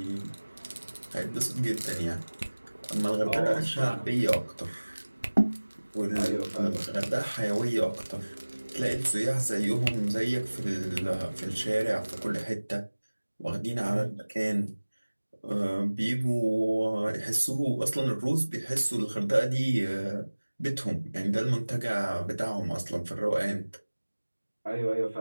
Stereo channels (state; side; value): inverted; both; correlation -1.00